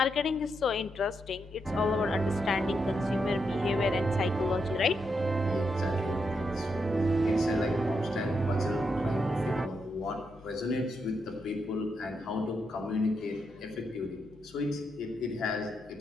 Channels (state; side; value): normal; both; correlation 0.82